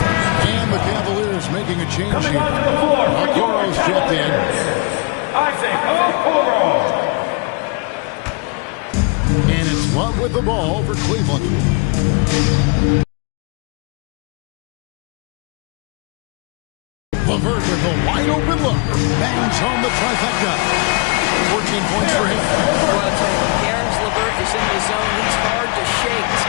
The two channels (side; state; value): right; quieter; 31.1 dB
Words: And the Cavaliers making a change here. Okoro's checked in. Isaac Okoro. And it's Love with the ball for Cleveland. LeVert with a wide open look. Bangs home the trifecta. 14 points for him. Well, I'll tell you, when Karis LeVert is in the zone, he's hard to shake. This